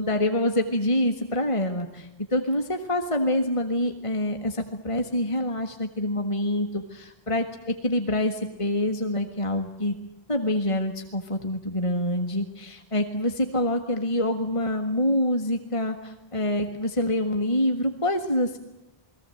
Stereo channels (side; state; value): right; late; 1.5 ms